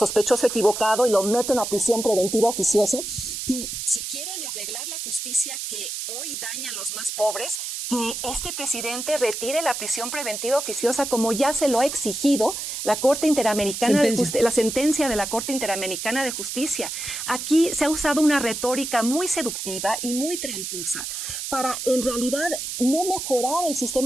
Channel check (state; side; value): noise; right; hiss, 5 dB below the sound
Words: equivocado y lo meten a prisión preventiva oficiosa. Que si quieren arreglar la justicia que hoy daña a los más pobres, que este presidente retire la prisión preventiva oficiosa como ya se lo ha exigido la Corte Interamericana la sentencia de la Corte Interamericana de Justicia. Aquí se ha usado una retórica muy seductiva y muy tramposa para en realidad no mejorar el